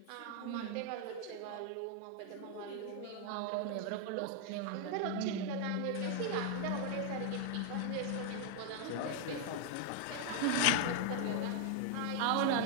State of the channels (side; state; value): both; different; correlation 0.00